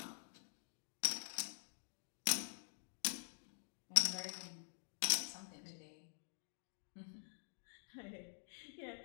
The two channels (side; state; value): right; silent; digital silence